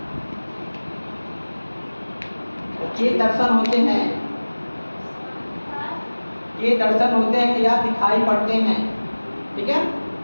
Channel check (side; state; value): both; inverted; correlation -1.00